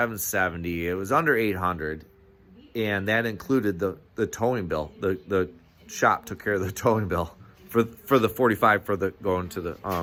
It was under 800, and that included the towing bill. The shop took care of the towing bill for the 45 for the going to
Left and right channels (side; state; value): both; identical; correlation 1.00